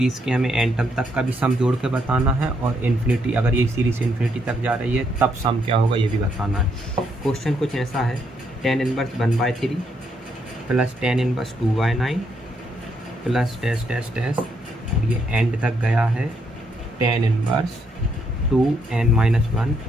के हमें n टर्म तक का भी सम जोड़ के बताना है, और इन्फिनिटी, अगर ये सीरीज़ इन्फिनिटी तक जा रही है तब सम क्या होगा ये भी बताना है। क्वेश्चन कुछ ऐसा है, tan inverse 1/3 plus tan inverse 2/9 plus dash dash dash, और ये एंड तक गया है tan inverse 2n-1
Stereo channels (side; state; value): both; normal; correlation 0.75